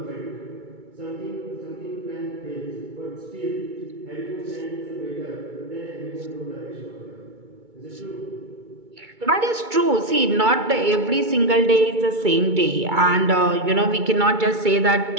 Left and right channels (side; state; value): left; late; 2.3 ms